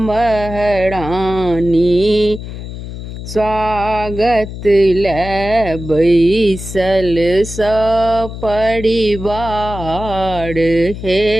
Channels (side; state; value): left; noise; hum, 10 dB below the sound